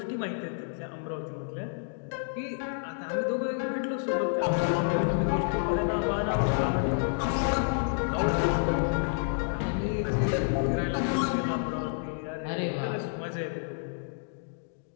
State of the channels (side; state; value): right; silent; digital silence